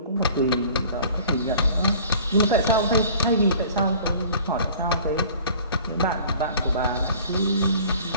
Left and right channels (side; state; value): both; inverted; correlation -0.48